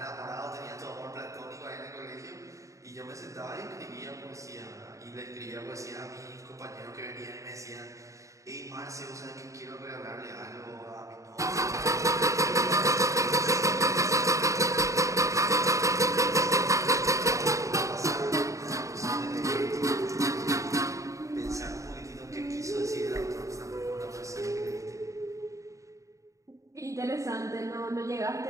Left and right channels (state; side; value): late; left; 0.15 ms